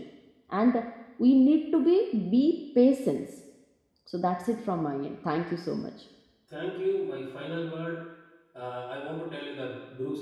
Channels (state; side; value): identical; both; correlation 1.00